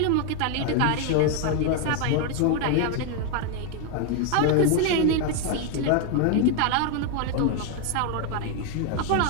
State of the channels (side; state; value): both; different; correlation 0.01